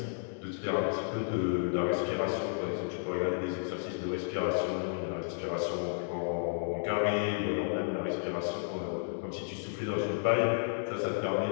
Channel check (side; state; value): right; silent; digital silence